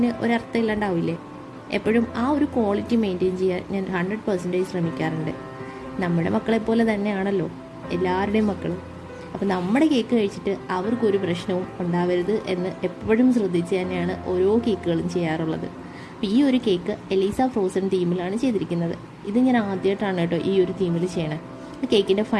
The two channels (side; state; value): both; identical; correlation 1.00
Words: ഒരർത്ഥം ഇല്ലാണ്ടാവില്ലേ. എപ്പോഴും ആ ഒരു ക്വാളിറ്റി മെയിൻറ്റെയിൻ ചെയ്യാൻ ഞാൻ 100% ശ്രമിക്കാറുണ്ട്. നമ്മുടെ മക്കളെപ്പോലെ തന്നെയാണല്ലോ എല്ലാവരുടെയും മക്കളും. അപ്പോൾ നമ്മുടെ കേക്ക് കഴിച്ചിട്ട് അവർക്കൊരു പ്രശ്നവും ഉണ്ടാവരുത് എന്ന് എപ്പോഴും ശ്രദ്ധിച്ച് തന്നെയാണ് ഓരോ കേക്കുകളും ചെയ്യാറുള്ളത്. അപ്പോൾ ഈ ഒരു കേക്ക് എലീസ ഫ്രോസൺ തീമിലാണ് ചെയ്തിരിക്കുന്നത്. ഇത് ഞാൻ ആദ്യമായിട്ടാണ് കേട്ടോ ഈ ഒരു തീമിൽ ചെയ്യണേ. കേക്കിൻ്റെ